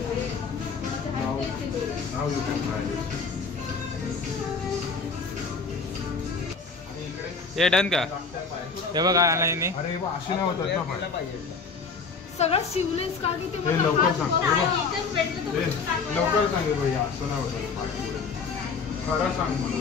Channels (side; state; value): right; quieter; 4.9 dB